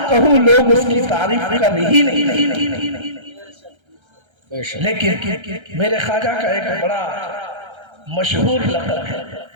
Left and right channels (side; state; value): left; late; 1.3 ms